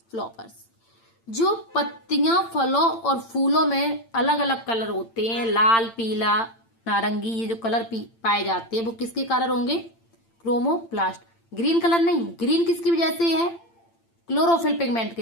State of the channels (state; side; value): late; right; 8.8 ms